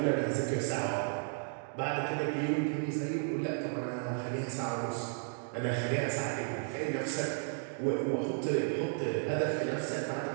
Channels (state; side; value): silent; left; 55 dB below the other